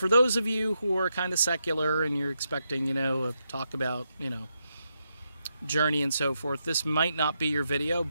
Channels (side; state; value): both; inverted; correlation -0.83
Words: those of you who are kind of secular and you're expecting, talk about, Journey and so forth, this might not be your video,